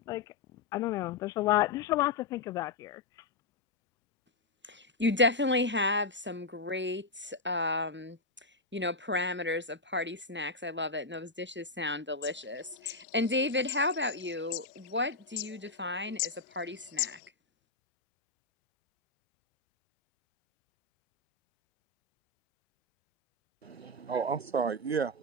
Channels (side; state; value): right; quieter; 3.1 dB